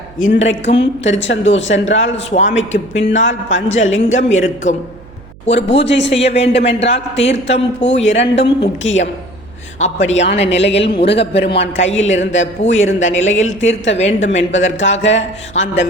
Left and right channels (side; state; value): right; noise; hum, 22 dB below the sound